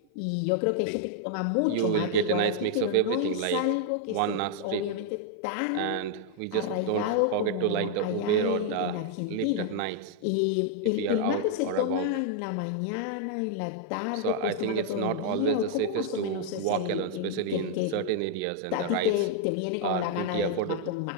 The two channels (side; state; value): both; different; correlation 0.00